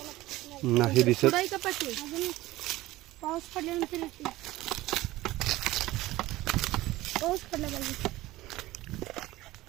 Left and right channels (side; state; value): left; quieter; 17.6 dB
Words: नाही दिसत. पाऊस पडल्यानंतर येते. पाऊस पडला पाहिजे.